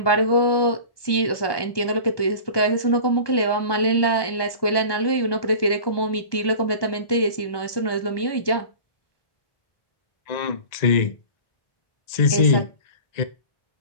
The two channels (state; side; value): late; right; 1.2 ms